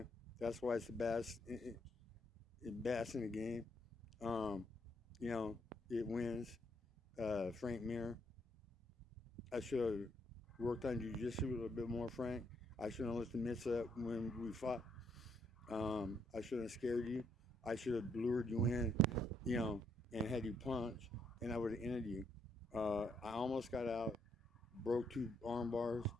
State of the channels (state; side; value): normal; both; correlation 0.73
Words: That's why it's the best. Best in the game. You know, it wins. Frank Mir. I should have worked on jiu-jitsu a little bit more, Frank. I shouldn't have let the mitts up when we fought. I shouldn't have scared you. I should have lured you in, you know, and had you punch, and I would have ended you. I almost got out, broke 2 arm bars,